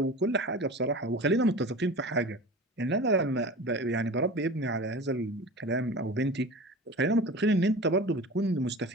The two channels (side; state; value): both; normal; correlation 0.35